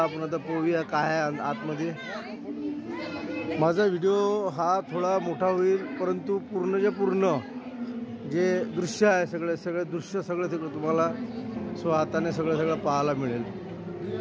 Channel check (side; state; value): both; identical; correlation 1.00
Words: आता पाहूया काय आहे आतमध्ये. माझा व्हिडिओ हा थोडा मोठा होईल, परंतु पूर्णच्या पूर्ण जे दृश्य आहे सगळे दृश्य सगळं तुम्हाला हाताने सगळं पाहायला मिळेल.